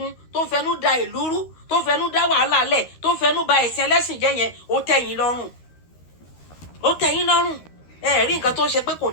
tó ń fẹnu da ìlú rú tó ń fẹnu dá wàhálà lẹ̀ tó ń fẹnu ba ẹ̀sìn ẹlẹ́sìn jẹ́ yẹn ó tẹ́yìn lọ́rùn ẹ rí nǹkan tó ń ṣe pé kò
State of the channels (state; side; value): late; right; 13 ms